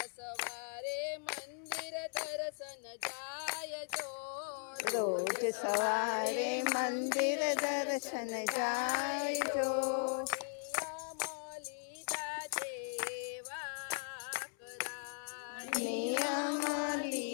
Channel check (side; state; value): right; silent; 52 dB below the other